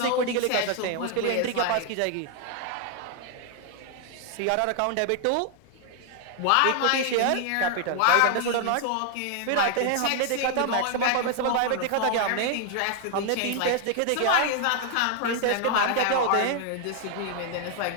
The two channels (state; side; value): different; both; correlation 0.00